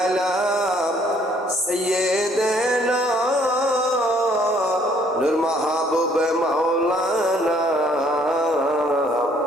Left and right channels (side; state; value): both; normal; correlation 0.63